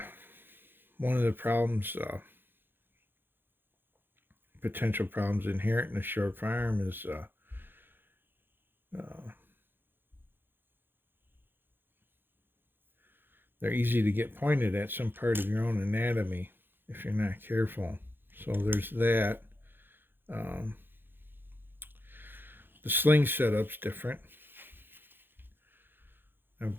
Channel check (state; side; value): late; left; 0.10 ms